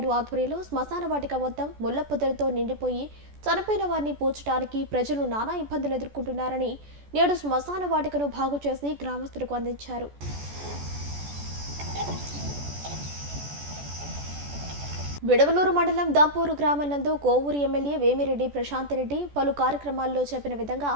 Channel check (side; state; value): left; late; 14 ms